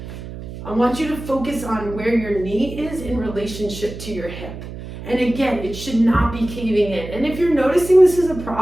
I want you to focus on where your knee is in relationship to your hip. And again, it should not be caving in. And if you're noticing this is a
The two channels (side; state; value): right; noise; hum, 11 dB below the sound